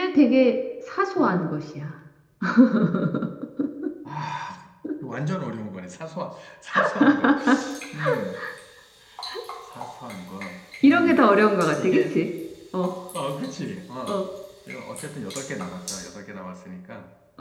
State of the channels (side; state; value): both; identical; correlation 1.00